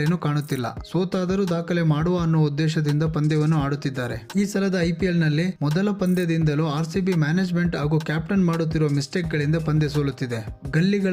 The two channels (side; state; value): both; identical; correlation 1.00